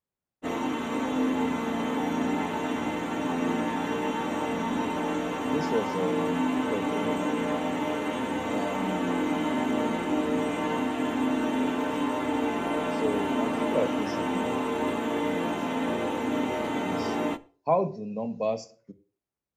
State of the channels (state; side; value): identical; both; correlation 1.00